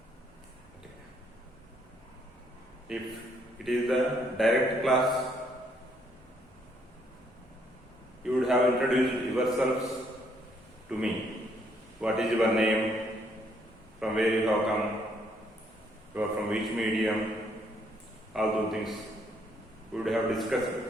If it is the direct class, you would have introduced yourselves to me. What is your name? From where you have come? You are from which medium? All those things we would have discussed.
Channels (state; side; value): normal; both; correlation 0.70